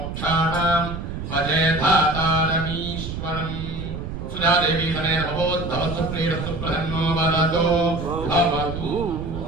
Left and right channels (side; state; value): right; noise; rumble, 7 dB below the sound